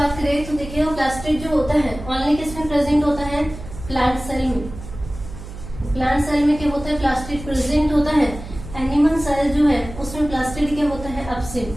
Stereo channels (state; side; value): noise; right; hum, 12 dB below the sound